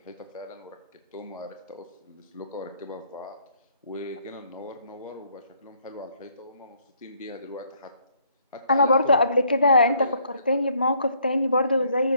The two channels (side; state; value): both; inverted; correlation -0.67